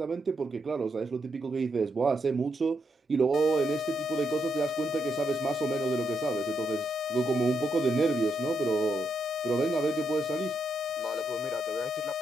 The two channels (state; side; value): normal; both; correlation 0.80